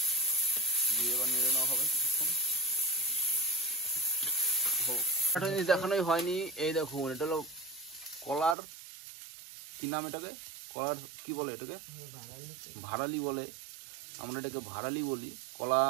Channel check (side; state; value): left; drops out; at 8.6 s